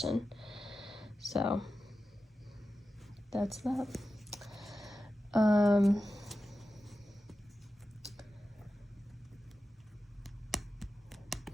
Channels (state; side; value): normal; both; correlation 0.92